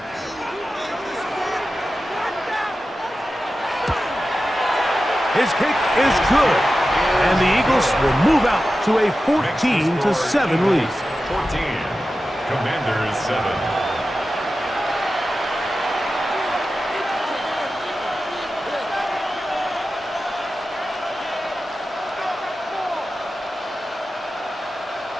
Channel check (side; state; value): both; normal; correlation 0.93